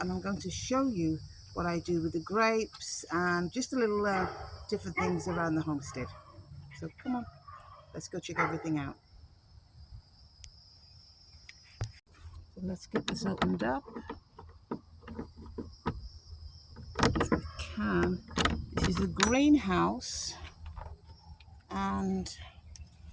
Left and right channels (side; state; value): both; identical; correlation 1.00